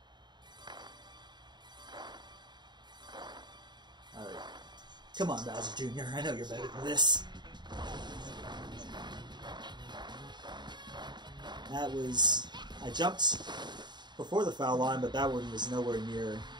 Alright. Come on, Bowser Jr., I know you're better than this. That was... I jumped before the foul line, but that one was nowhere near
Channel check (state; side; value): late; left; 0.21 ms